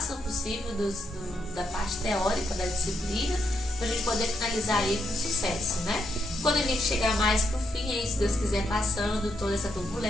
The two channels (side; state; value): both; normal; correlation 0.79